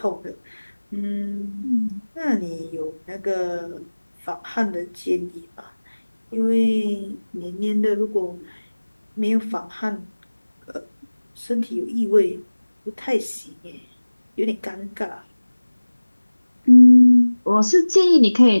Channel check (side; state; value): both; inverted; correlation -1.00